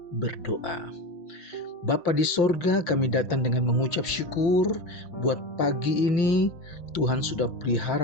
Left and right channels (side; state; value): right; late; 5.8 ms